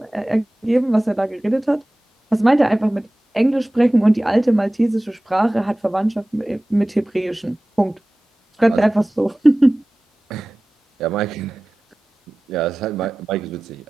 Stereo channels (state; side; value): normal; both; correlation 0.97